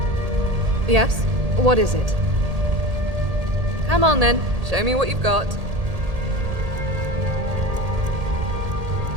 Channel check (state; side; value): late; left; 1.8 ms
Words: Yes? What is it? Come on then, show me what you've got.